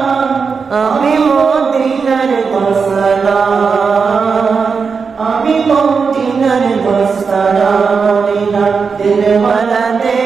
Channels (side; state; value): left; quieter; 5.4 dB